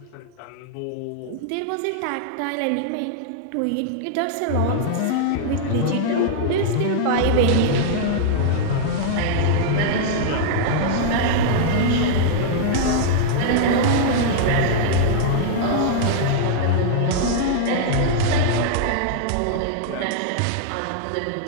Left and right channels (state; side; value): different; both; correlation -0.01